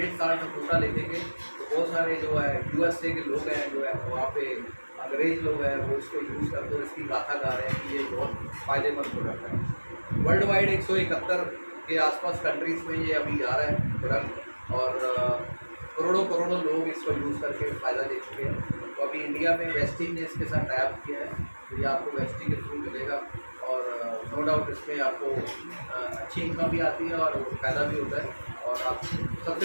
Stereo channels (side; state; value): both; inverted; correlation -1.00